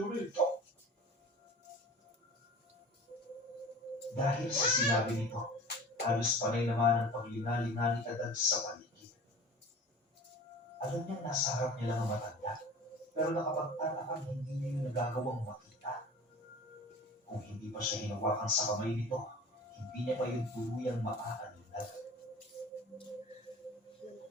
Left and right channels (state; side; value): normal; both; correlation 0.39